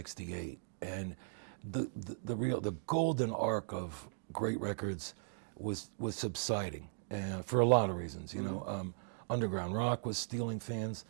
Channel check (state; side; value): silent; left; digital silence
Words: and the golden arc of great records was subsiding, for a lot of reasons. Underground rock was stealing fans,